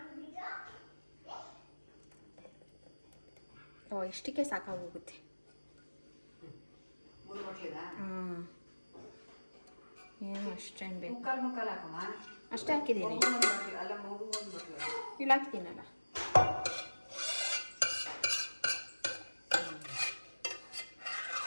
ಓ, ಇಷ್ಟಕ್ಕೆ ಸಾಕಾಗೋಗುತ್ತೆ. ಹಾಂ, ಏನು ಅಷ್ಟೇನು ಬೇಕು? ಮುಕ್ಕಲ್ ಹಾಕಮ್ಮ. ಅಷ್ಟೇ ಹಾಕಿದ್ದೀನಿ. ಇಲ್ಲಿ ಹಾಕ್ತೀನಲ್ಲ.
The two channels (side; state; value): both; inverted; correlation -1.00